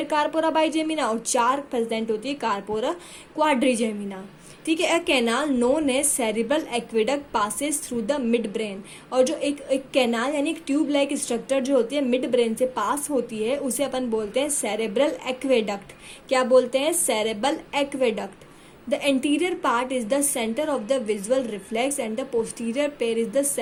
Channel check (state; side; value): identical; both; correlation 1.00